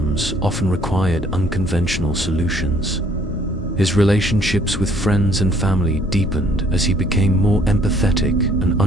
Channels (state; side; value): normal; both; correlation 0.61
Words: often required unconventional solutions. His relationships with friends and family deepened as he became more empathetic and